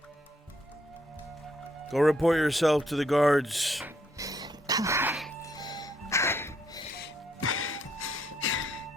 Go report yourself to the guards.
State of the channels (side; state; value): both; normal; correlation 0.72